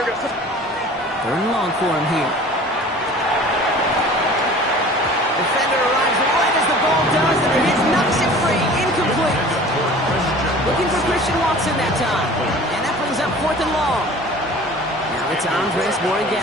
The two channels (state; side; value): normal; both; correlation 0.44